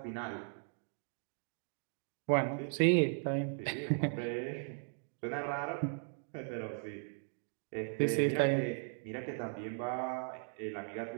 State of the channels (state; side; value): silent; left; 53 dB below the other